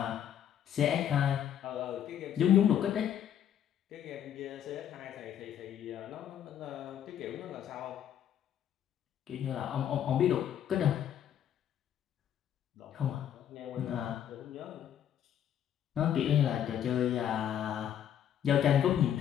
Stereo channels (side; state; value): right; quieter; 9.9 dB